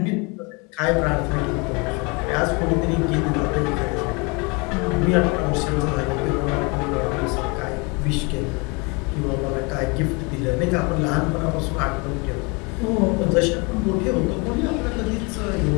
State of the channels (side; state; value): right; quieter; 29.8 dB